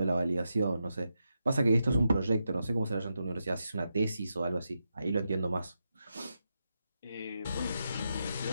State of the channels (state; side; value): inverted; both; correlation -0.86